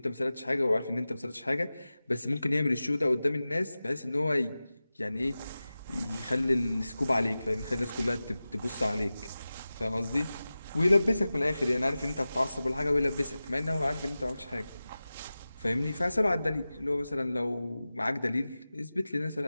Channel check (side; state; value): both; inverted; correlation -0.96